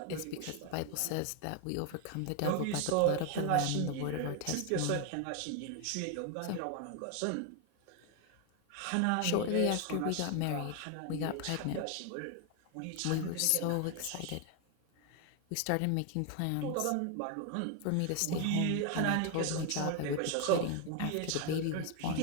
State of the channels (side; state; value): both; different; correlation 0.01